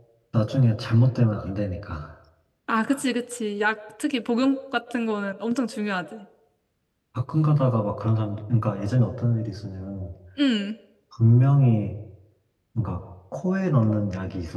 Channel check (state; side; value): identical; both; correlation 1.00